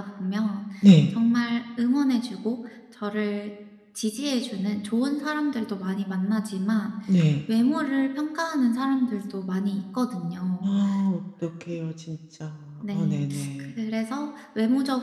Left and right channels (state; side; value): identical; both; correlation 1.00